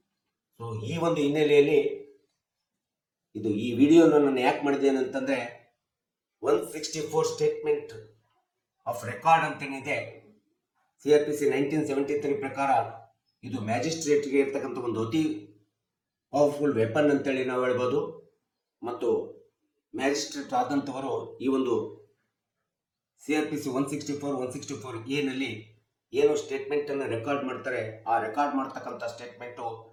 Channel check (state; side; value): identical; both; correlation 1.00